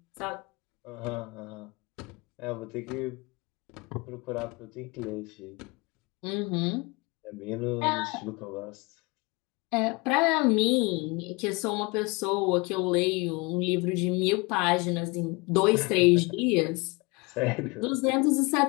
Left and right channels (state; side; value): quieter; right; 26.8 dB